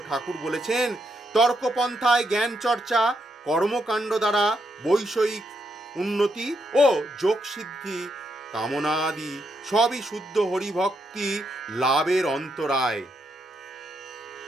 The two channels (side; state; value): both; normal; correlation 0.80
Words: ঠাকুর বলেছেন, তর্কপন্থায় জ্ঞান চর্চা, কর্মকাণ্ড দ্বারা বৈষয়িক উন্নতি ও যোগ সিদ্ধি কামনাদি সবই শুদ্ধ হরিভক্তি লাভের অন্তরায়।